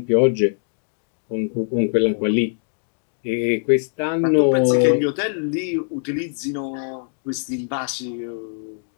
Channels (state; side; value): silent; right; 64 dB below the other